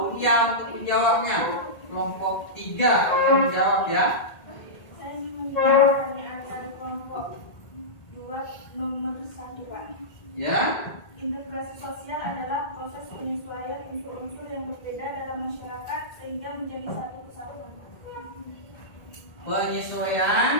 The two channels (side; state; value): right; late; 1.7 ms